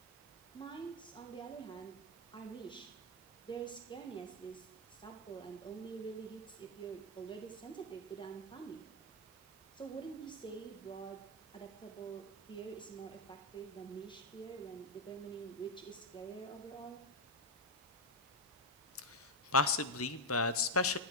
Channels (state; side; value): normal; both; correlation 0.04